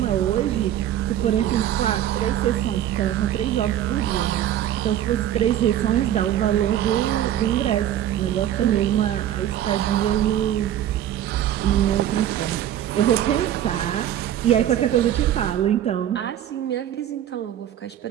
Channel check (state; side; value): quieter; left; 11.5 dB